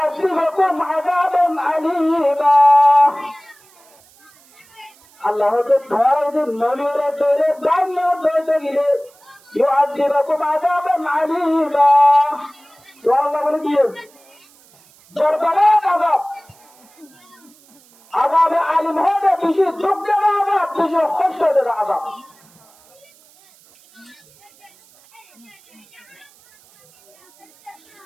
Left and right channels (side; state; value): right; noise; hiss, 29 dB below the sound